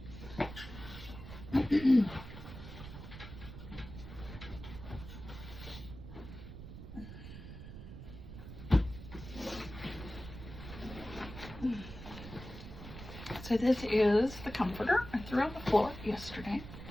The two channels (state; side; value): noise; right; rumble, 12 dB below the sound